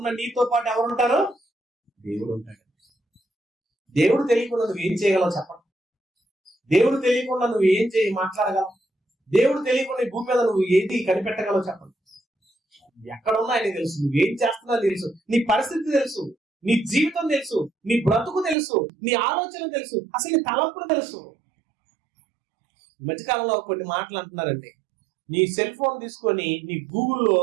నీతో పాటు ఎవరు ఉంటారు? దేవుడు ఉంటాడు. దేవుడు తెలియకుండా నువ్వు ఏం చేయగలవు చెప్పండి? దేవుడు తెలియకుండా నువ్వు ఏం మాట్లాడగలవు? దేవుడు తెలియకుండా ఈ భూమి మీద నువ్వు ఏది కనిపెట్టగలవు చెప్పండి? ఎక్కడున్నా ఆయన తెలుసు, నువ్వేం చేస్తున్నా తెలుసు, నీ పరిస్థితి తెలుసు, నీ జీవితం తెలుసు, నీ బ్రతుకు తెలుసు, నీ ఆలోచన తెలుసు, అసలు నీ తలంపులు తెలుసు. ఈ మధ్యకాలంలో కొన్ని మాటలు అంటున్నారండి, నీ సెల్ ఫోన్ తీసుకొని నీ గూగుల్లో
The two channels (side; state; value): left; drops out; at 18.6 s